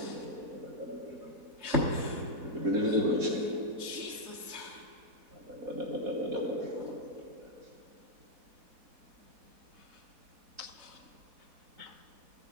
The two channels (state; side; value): late; left; 4.1 ms